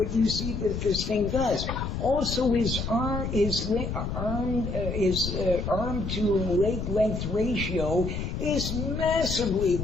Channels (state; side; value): noise; left; rumble, 4 dB below the sound